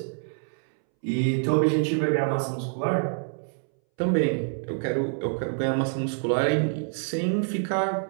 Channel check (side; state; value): left; silent; 61 dB below the other